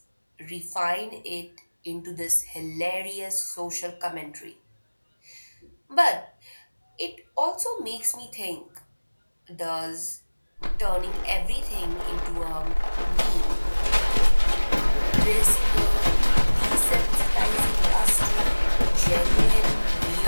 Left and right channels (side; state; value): both; inverted; correlation -1.00